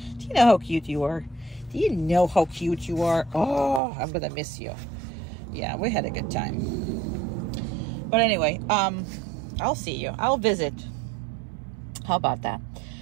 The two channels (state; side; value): drops out; left; at 3.8 s